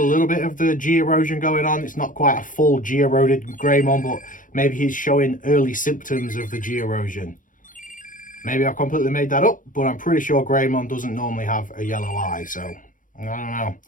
bit of the G erosion going on. It's not quite a full G eroded Greymon, but maybe he's showing early symptoms of the G erosion. Maybe I've completely made that up, but I'm pretty sure Greymon doesn't normally have a yellow eye, so I don't know.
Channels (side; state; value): right; late; 0.38 ms